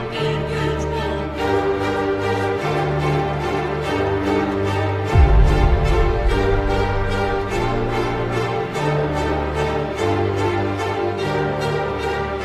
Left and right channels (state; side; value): identical; both; correlation 1.00